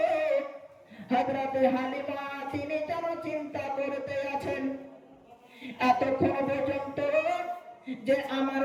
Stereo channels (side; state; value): both; identical; correlation 1.00